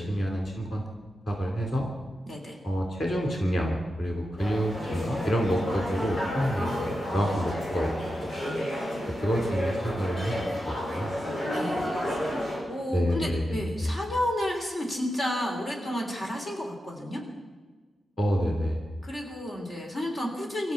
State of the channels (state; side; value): normal; both; correlation 0.89